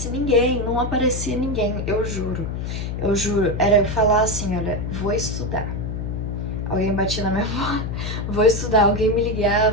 ninguém, não aparecia ninguém, eu juro. Eu juro, era eu falar assim, olha, vou estudar. Alguém batia na minha porta, vou estudar, alguém me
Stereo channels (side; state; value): left; noise; hum, 4 dB below the sound